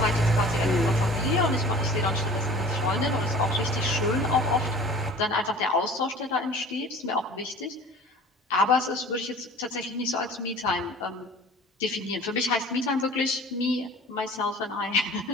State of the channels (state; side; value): normal; both; correlation 0.44